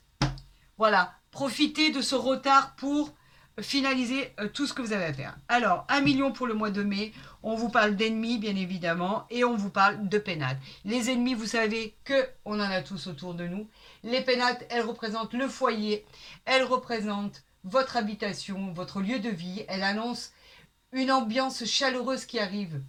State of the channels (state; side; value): identical; both; correlation 1.00